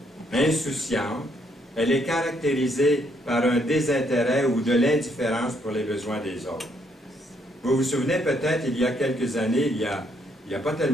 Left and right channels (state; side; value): normal; both; correlation 0.72